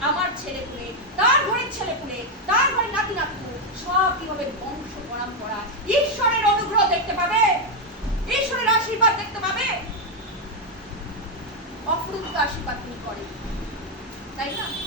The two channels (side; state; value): both; normal; correlation 0.03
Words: আমার ছেলেপুলে, তার ঘরের ছেলেপুলে, তার ঘরের নাতি নাতু সব কিভাবে বংশ পরম্পরা ঈশ্বরের অনুগ্রহ দেখতে পাবে, ঈশ্বরের আশীর্বাদ দেখতে পাবে। অফুরন্ত আশীর্বাদ তিনি করেন, তাই না?